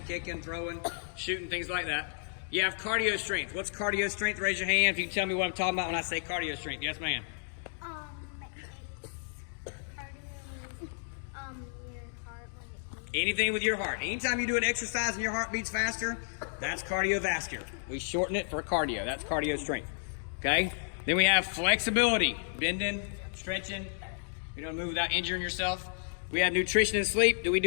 kicking, throwing, shooting, things like that. You have cardio strength. What's cardio strength? Raise your hand if you can tell me what I'm talking about when I say cardio strength. Yes, ma'am. It's cardio, your heart when it beats. Anything with your heart. Anytime you do an exercise and your heart beats faster, that's cardiovascular. We shorten it for cardio. That's cardio strength. Okay? Then we have flexibility. Bending, stretching. You don't move without injuring yourself. We have nutrition and sleep. Do we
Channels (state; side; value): silent; right; digital silence